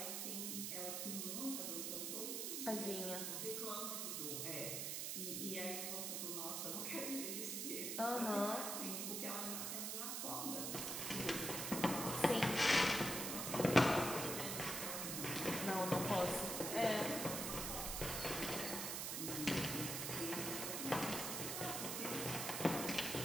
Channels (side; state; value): right; noise; hiss, 2 dB below the sound